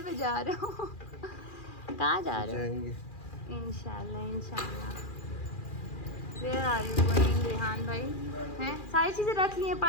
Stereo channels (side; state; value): right; late; 2.4 ms